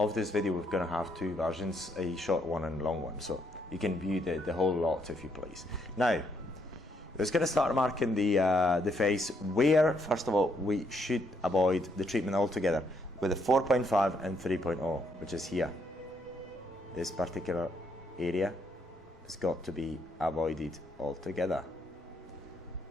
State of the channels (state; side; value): normal; both; correlation 0.73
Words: this video, we're going to have two versions, a short one and a long one. So you can view the whole lot if you please. Now, we're just going to start marking the face where, first of all, we should avoid the treatment altogether with a 4.5 and 3.0, which is here. This particular area has got to be avoided altogether.